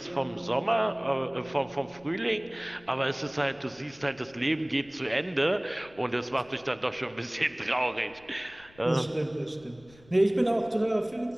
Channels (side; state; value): left; noise; rumble, 26 dB below the sound